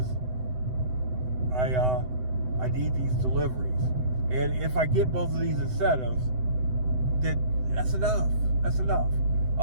I need these deliveries, and if I get both of these incentives, then that's enough.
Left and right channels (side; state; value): left; late; 7.9 ms